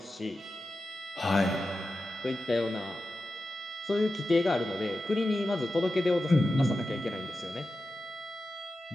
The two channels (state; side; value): normal; both; correlation 0.92